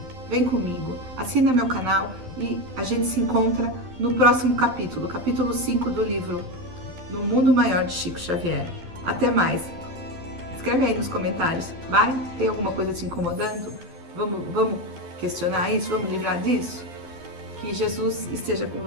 vem comigo, assina meu canal e a gente se encontra no próximo capítulo, capítulo 5 do livro No Mundo Maior de Chico Xavier. Até mais! Escreve aí nos comentários, vai? Tem alguma coisa te incomodando? Vamos questionar isso? Vamos livrar disso? Que Jesus esteja com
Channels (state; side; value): late; left; 12 ms